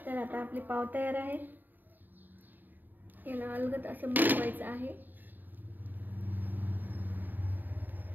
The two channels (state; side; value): late; left; 0.089 ms